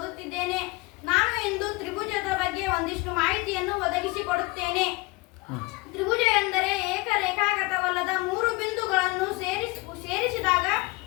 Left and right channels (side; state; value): right; quieter; 23.7 dB